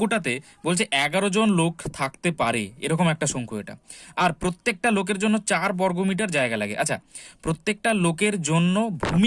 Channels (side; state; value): both; identical; correlation 1.00